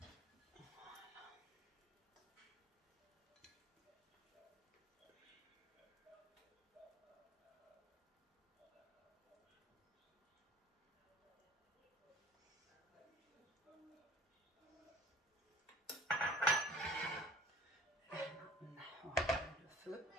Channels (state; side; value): normal; both; correlation 0.48